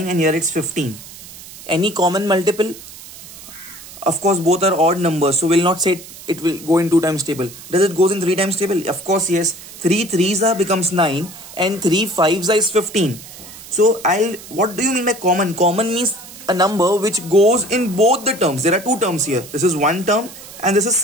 and here it's 15. Any common multiple? Of course, both are odd numbers. So we'll not say it will go in 2 times table. Does it goes in 3 times table? Of course, yes. 3 3s becomes 9 and 3 5s is 15. So what do you mean by common? Common means a number which goes in both the terms. There are 2 terms here. This is one term and this is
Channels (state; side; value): noise; right; hiss, 16 dB below the sound